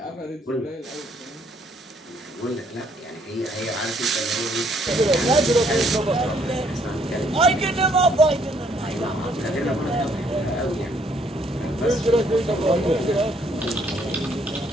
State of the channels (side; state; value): both; normal; correlation 0.67